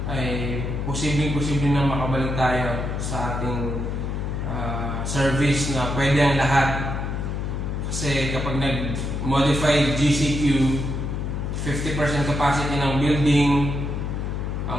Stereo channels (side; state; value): left; noise; hum, 2 dB below the sound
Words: ay posibleng na makabalik tayo sa ating service na pwede ang lahat. Kasi kapag nag-modified GCQ, 50% capacity ng building